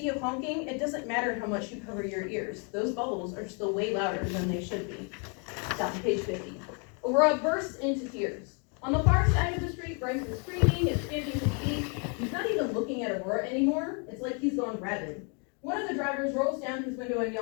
of honking, it doesn't matter how much you cover your ears. Those bubbles are still way louder than they should be. Stop to page 50. Aurora bursts into tears. On the far side of the street, Bryce is screaming and stamping his feet. He's not even looking at Aurora anymore. It's like he's gone rabid. One of the drivers rolls down his window and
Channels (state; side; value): quieter; right; 37.1 dB